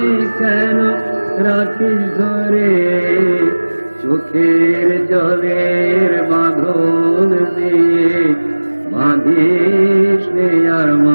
কেন রাখিস ধরে চোখের জলের বাঁধন দিয়ে বাঁধিস নে আর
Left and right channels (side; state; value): both; inverted; correlation -1.00